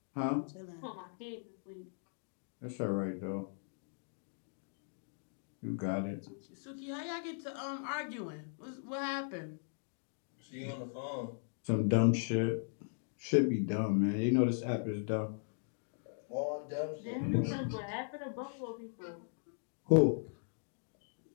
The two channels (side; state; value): right; silent; digital silence